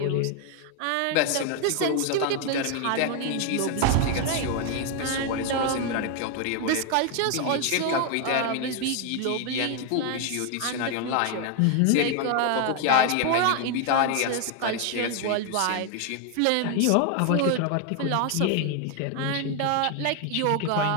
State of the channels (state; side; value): different; both; correlation 0.01